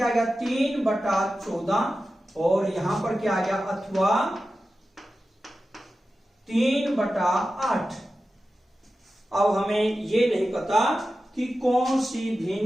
आ गया 3/14 और यहां पर क्या आ गया अथवा 3/8। अब हमें ये नहीं पता कि कौन सी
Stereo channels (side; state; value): both; normal; correlation 0.93